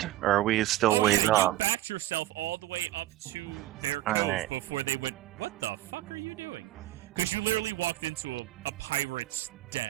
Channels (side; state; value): left; quieter; 15.2 dB